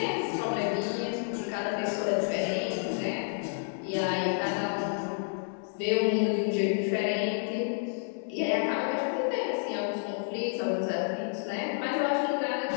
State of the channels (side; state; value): right; silent; digital silence